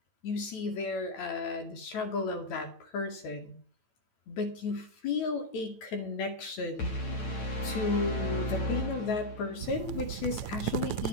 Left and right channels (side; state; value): right; late; 9.0 ms